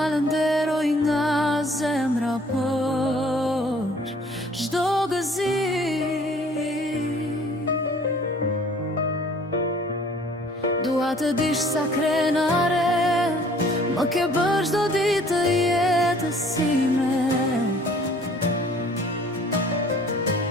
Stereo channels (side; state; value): both; normal; correlation 0.55